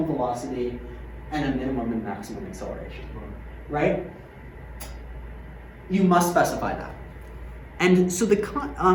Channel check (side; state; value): both; identical; correlation 1.00